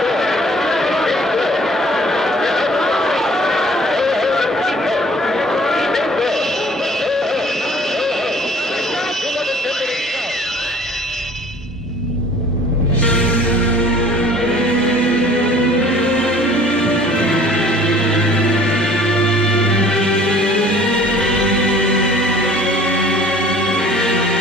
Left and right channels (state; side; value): normal; both; correlation 0.51